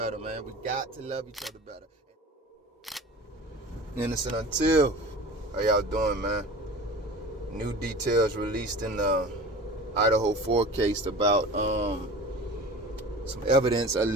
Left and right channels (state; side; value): normal; both; correlation 0.37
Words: man. We got to love each other better. Innocent until. How y'all doing, man? New details released in the Idaho 4 case about some evidence